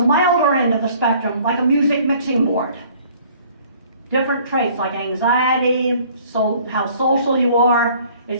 milder end of the spectrum, like a music mixing board. Different traits like anxiety, how social you are.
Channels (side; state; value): both; inverted; correlation -0.55